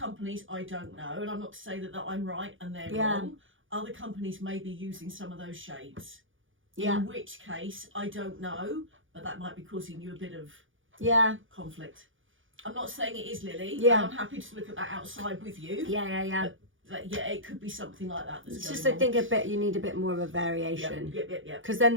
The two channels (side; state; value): left; late; 0.57 ms